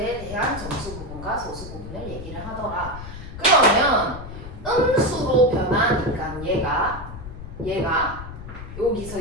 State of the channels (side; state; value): left; noise; rumble, 11 dB below the sound